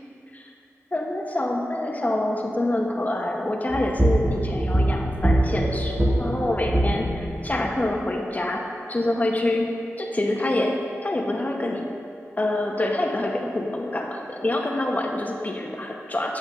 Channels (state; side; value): normal; both; correlation 0.91